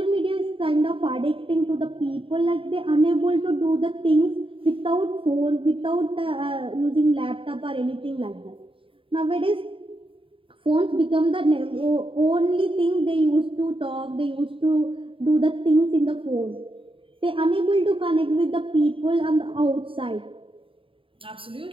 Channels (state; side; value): late; left; 0.25 ms